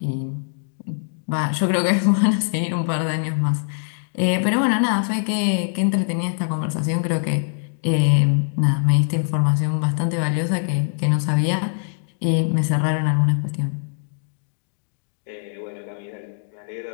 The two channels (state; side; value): silent; right; digital silence